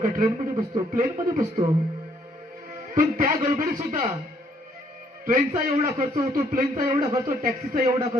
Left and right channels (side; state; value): both; normal; correlation 0.67